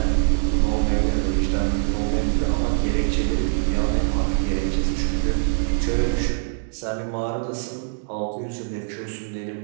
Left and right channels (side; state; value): left; silent; 62 dB below the other